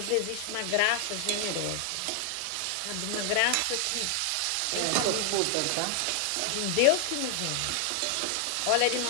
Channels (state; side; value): different; both; correlation 0.00